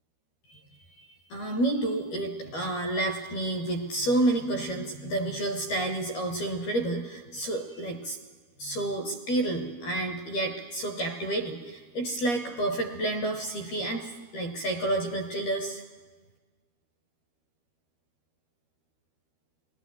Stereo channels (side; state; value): right; late; 13 ms